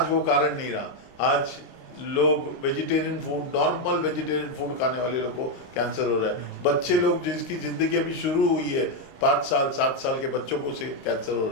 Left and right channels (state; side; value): late; right; 23 ms